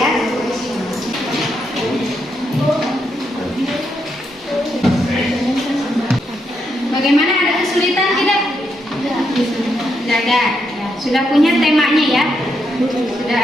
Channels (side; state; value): both; normal; correlation 0.80